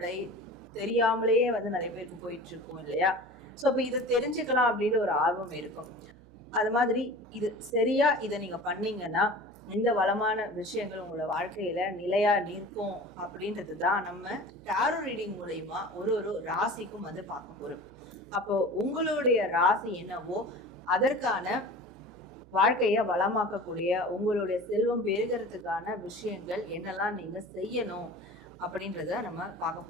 தெரியாமலேயே நிறைய பேருக்கு போயிட்டு இருக்கும் இல்லையா? ஸோ அப்போ இதை தெரிஞ்சுக்கலாம் அப்படின்னு ஒரு ஆர்வம் இருக்கும். அது மாதிரி இது சரியா இதை நீங்க பண்ணீங்கன்னா இந்த வளமான விஷயங்கள் உங்களோட வாழ்க்கையில நிலையா நிற்கும் அப்படின்றது தான் நம்ம டாரோ ரீடிங் மூலயமா ஒரு ராசிக்கும் பார்க்க போறோம். அப்போ உங்களுடைய ராசி என்னவோ அதற்கான வாழ்க்கைய வளமாக்கக்கூடிய, உங்களுடைய செல்வம் பெருகிறதுக்கான விஷயங்கள் என்னெல்லாம் நீங்க செய்யணும் அப்படின்றத நம்ம பார்க்க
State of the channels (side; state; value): right; noise; hum, 23 dB below the sound